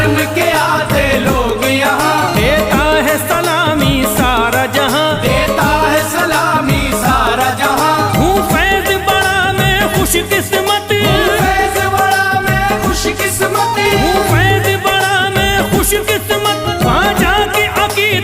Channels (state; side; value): identical; both; correlation 1.00